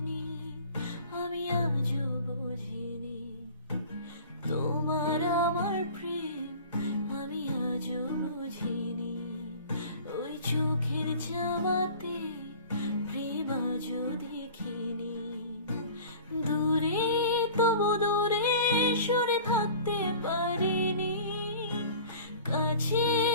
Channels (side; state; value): both; inverted; correlation -0.43